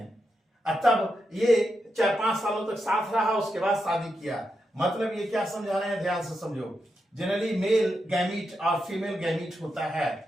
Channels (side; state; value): both; normal; correlation 0.85